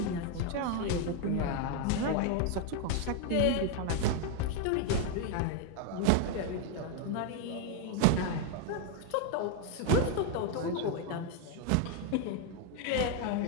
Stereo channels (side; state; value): both; different; correlation 0.01